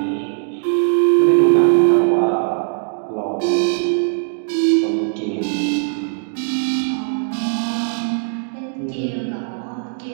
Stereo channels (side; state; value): left; silent; digital silence